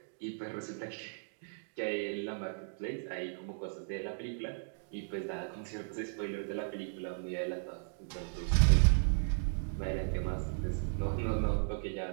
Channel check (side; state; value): left; silent; digital silence